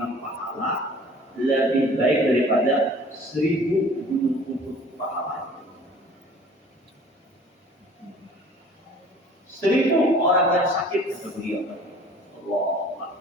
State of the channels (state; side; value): normal; both; correlation 0.49